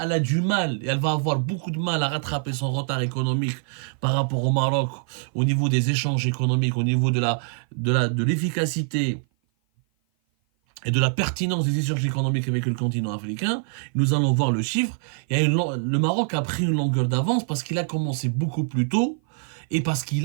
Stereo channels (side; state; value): left; silent; 56 dB below the other